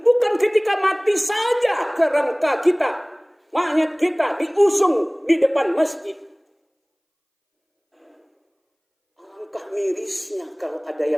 Bukan ketika mati saja kerangka kita, mayat kita diusung di depan masjid. Alangkah mirisnya kalau ada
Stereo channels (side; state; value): both; identical; correlation 1.00